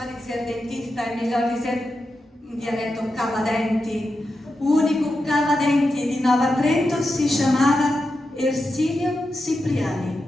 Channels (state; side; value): normal; both; correlation 0.89